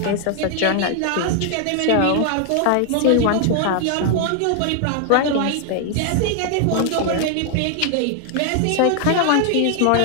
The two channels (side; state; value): both; different; correlation 0.00